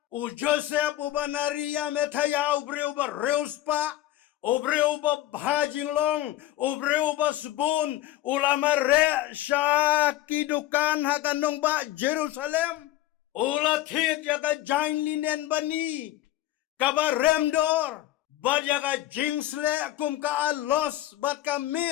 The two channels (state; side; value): quieter; right; 14.6 dB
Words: Joseph uba Maria Methaya ubreu ba reus pa obreu ba bhajing long obreu ba sebun ulama re sya kidukan hakanong ba Jerusalem ula thit yaka jain linen bani kaba remdor bat yaka jingsle kum ka alos bat